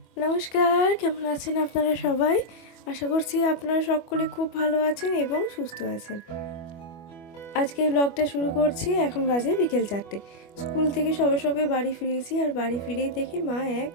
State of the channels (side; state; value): right; late; 25 ms